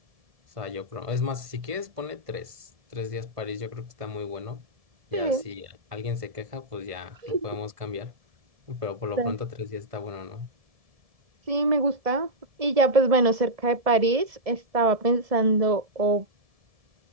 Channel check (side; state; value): left; late; 1.7 ms